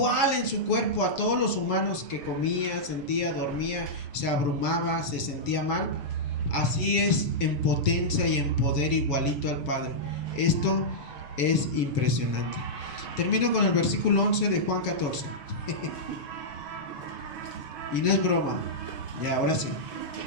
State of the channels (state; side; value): late; right; 7.0 ms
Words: en su cuerpo a todos los humanos, que comía, sentía, dormía, se abrumaba, se sentía mal, así es en potencia y en poder igualito al Padre. Esto es impresionante. Termino con el versículo 11 de Juan 14. Y no es broma. Ya, ahora sí.